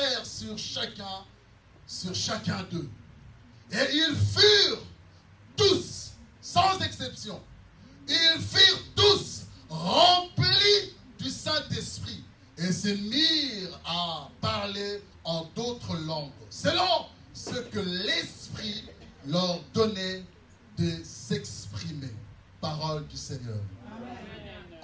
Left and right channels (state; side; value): identical; both; correlation 1.00